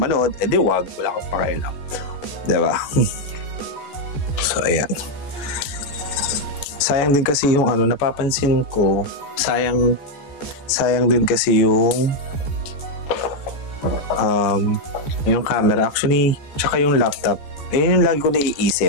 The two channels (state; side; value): late; right; 14 ms